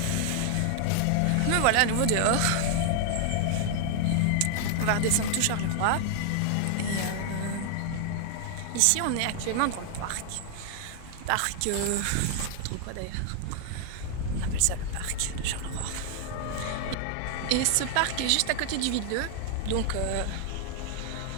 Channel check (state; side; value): different; both; correlation 0.00